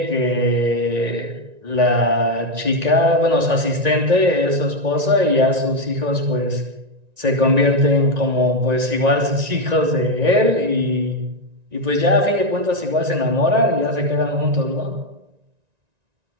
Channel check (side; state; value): left; late; 1.9 ms